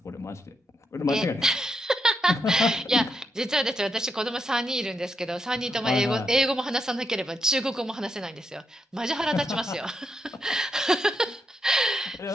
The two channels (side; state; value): both; normal; correlation 0.81